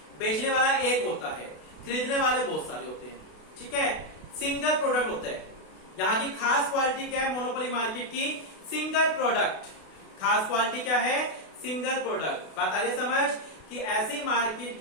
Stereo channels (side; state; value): right; late; 32 ms